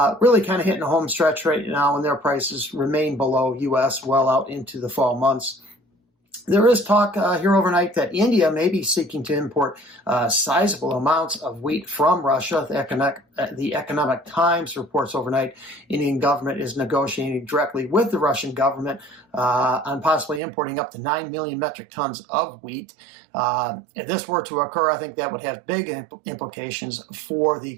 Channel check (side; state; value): left; drops out; at 20.4 s